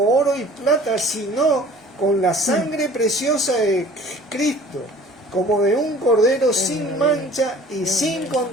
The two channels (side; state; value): both; normal; correlation 0.48